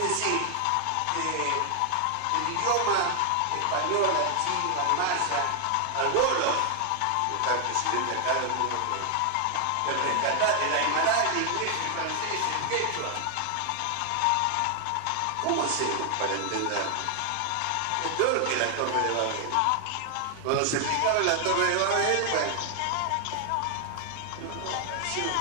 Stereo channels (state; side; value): different; both; correlation 0.00